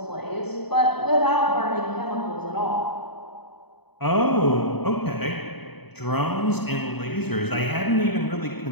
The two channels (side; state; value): right; late; 0.98 ms